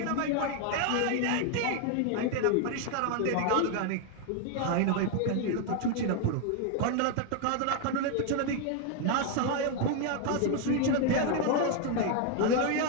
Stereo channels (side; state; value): both; different; correlation 0.01